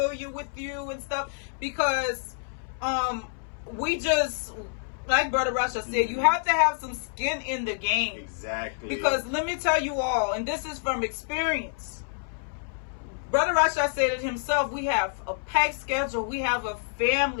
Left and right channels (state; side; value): silent; right; 60 dB below the other